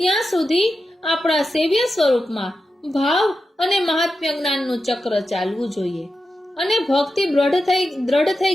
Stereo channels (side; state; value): both; normal; correlation 0.90